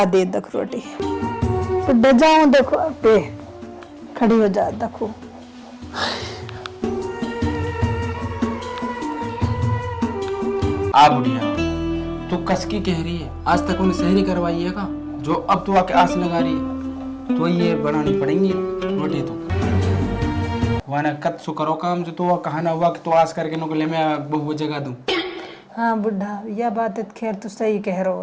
दे दख रोटी। बुढ़ा जाऊँ देखो पे खड़ी हो जा देखो। आ बुढ़िया, तू कसकी कह रही है, आज तक उन्हें सहरी करवाई है का? जो अब तू आके आस लगा रही है, तो ये बनानी पड़ेंगी रोटी तो। वाना कत सु करो काम जो तो कहा ना हुआ कि तो आस करके नो ले मैं बहु जगह दूं। हाँ बुढ़ा, यह बात खैर तू सही कह रहा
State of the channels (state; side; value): identical; both; correlation 1.00